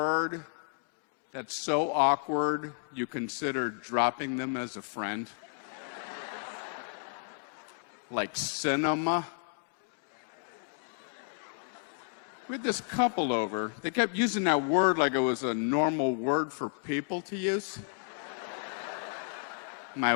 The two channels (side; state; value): right; silent; 56 dB below the other